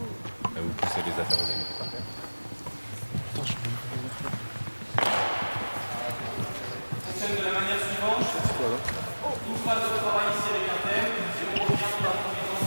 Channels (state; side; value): inverted; both; correlation -1.00